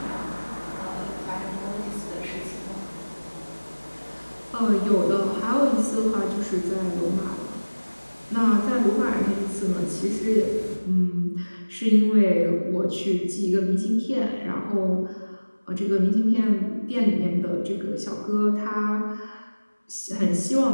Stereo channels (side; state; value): both; inverted; correlation -1.00